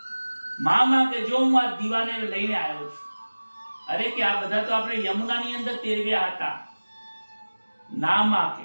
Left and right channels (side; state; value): both; inverted; correlation -1.00